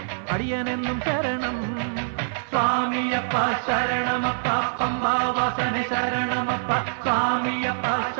അടിയനെന്നും ശരണം സ്വാമിയപ്പ ശരണമപ്പ പമ്പാവാസന ശരണമപ്പ സ്വാമിയപ്പ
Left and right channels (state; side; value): silent; left; 58 dB below the other